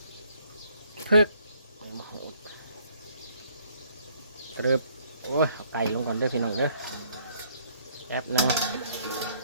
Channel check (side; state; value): both; inverted; correlation -0.64